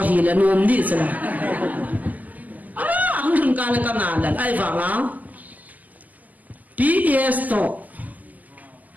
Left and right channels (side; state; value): left; late; 0.080 ms